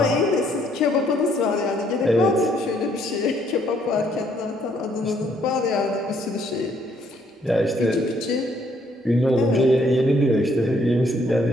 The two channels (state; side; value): normal; both; correlation 0.67